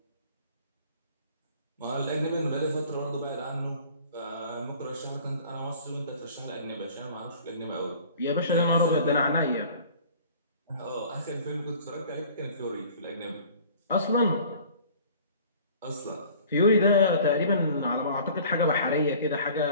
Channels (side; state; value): both; inverted; correlation -0.48